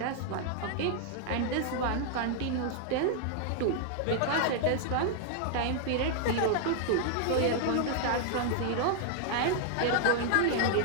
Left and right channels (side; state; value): both; different; correlation -0.01